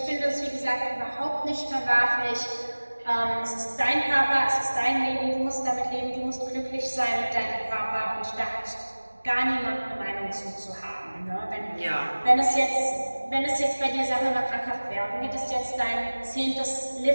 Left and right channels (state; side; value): inverted; both; correlation -1.00